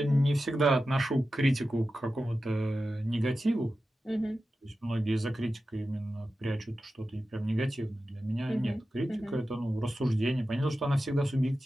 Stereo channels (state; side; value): normal; both; correlation 0.93